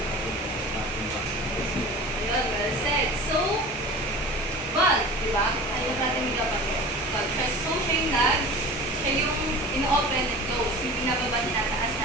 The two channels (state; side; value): normal; both; correlation 0.37